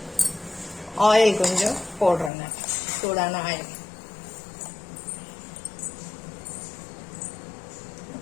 ஆயில் கொஞ்சம் போடுறேங்க, சூடான ஆயில்.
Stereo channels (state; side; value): drops out; right; at 2.3 s